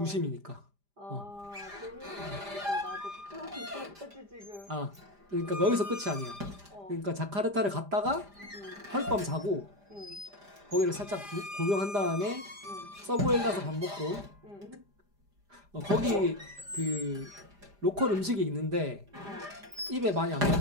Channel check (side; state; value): left; late; 5.0 ms